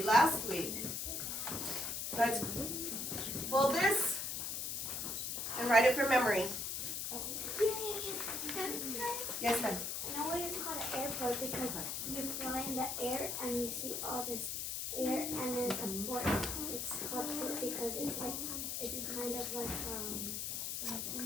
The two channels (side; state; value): left; noise; hiss, 3 dB below the sound